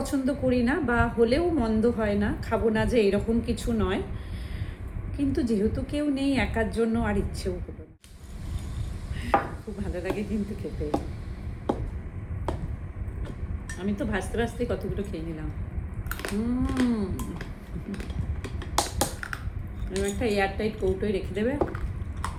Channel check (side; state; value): both; identical; correlation 1.00